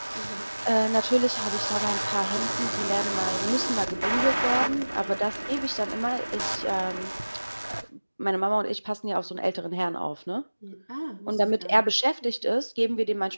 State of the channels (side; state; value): both; inverted; correlation -1.00